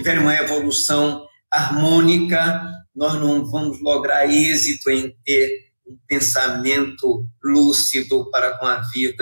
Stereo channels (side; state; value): both; inverted; correlation -1.00